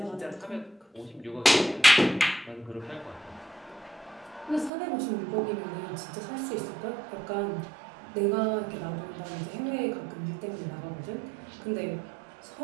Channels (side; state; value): left; drops out; at 4.7 s